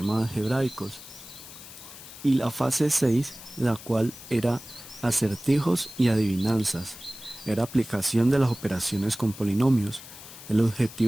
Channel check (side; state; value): left; noise; hiss, 16 dB below the sound